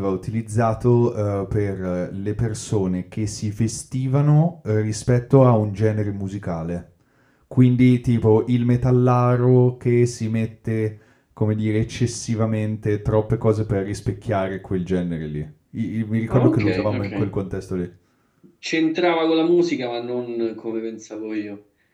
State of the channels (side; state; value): both; identical; correlation 1.00